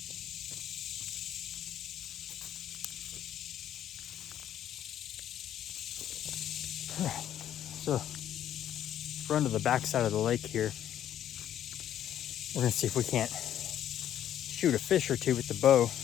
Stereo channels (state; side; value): quieter; right; 10.9 dB